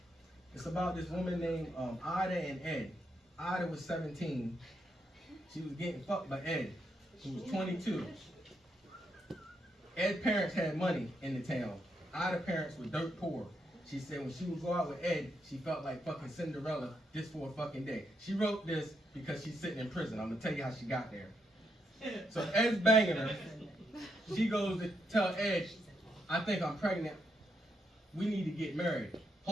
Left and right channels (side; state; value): both; normal; correlation 0.79